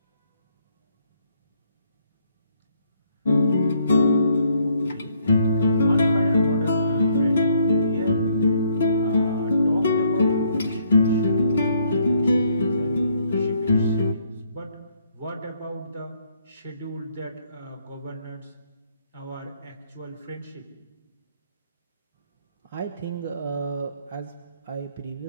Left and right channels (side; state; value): both; inverted; correlation -0.69